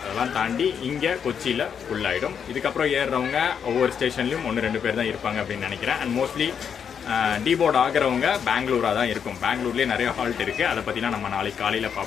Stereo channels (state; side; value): quieter; right; 7.5 dB